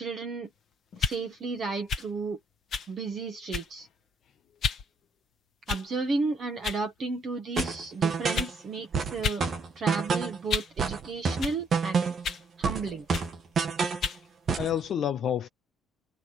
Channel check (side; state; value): both; normal; correlation 0.67